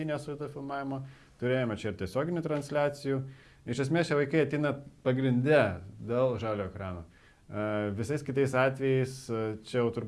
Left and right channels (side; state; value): both; identical; correlation 1.00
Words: vaizdo filmavimo. Turėjome čia ir tiesioginių transliacijų. Iš esmės šie vaikai ateina pagrinde dėl žalio ekrano. Visais kitais atvejais čia jau